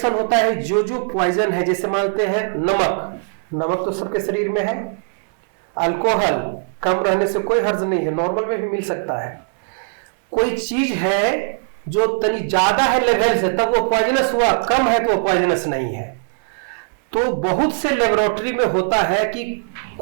होता है जो पॉइजन है, जैसे मानते हैं नमक तो सबके शरीर में है, अल्कोहल कम रहने से कोई हर्ज नहीं है, नॉर्मल में भी मिल सकता है, कोई चीज है जो तनी ज्यादा है लेवल से तब वो पॉइजनस हुआ, कम है तो वो पॉइजनस नहीं है। तो बहुत से लेबोरेटरी में होता है कि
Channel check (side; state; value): left; silent; 66 dB below the other